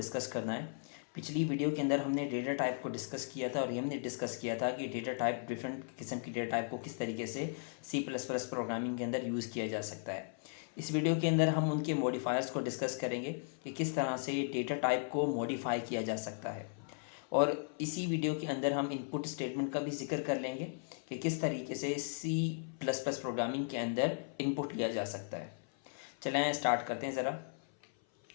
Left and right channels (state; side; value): silent; right; 53 dB below the other